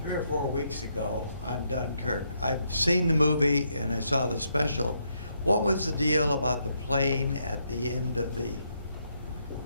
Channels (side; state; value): both; inverted; correlation -0.77